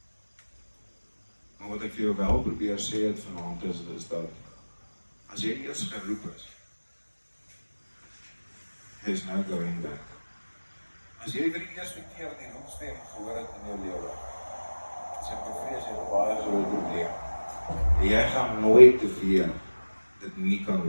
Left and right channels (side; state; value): both; inverted; correlation -1.00